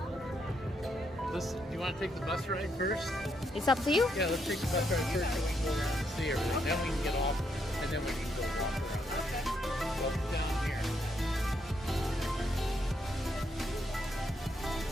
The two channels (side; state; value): both; normal; correlation 0.77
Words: you want to take the bus ride first? It's up to you. Yeah, let's take the bus ride first so we can go around and see everything. Then we can get off and then we can go walk around. Okay. Well, down here.